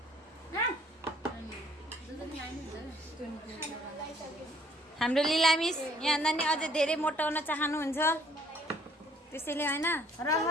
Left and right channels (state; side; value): normal; both; correlation 0.61